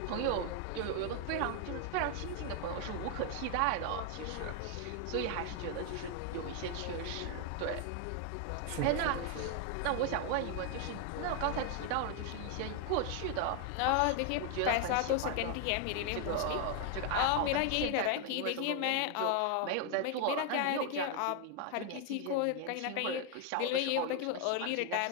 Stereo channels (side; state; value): both; different; correlation 0.00